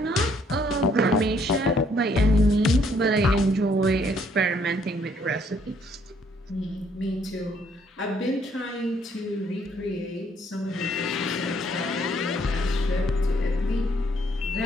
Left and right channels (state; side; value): normal; both; correlation 0.67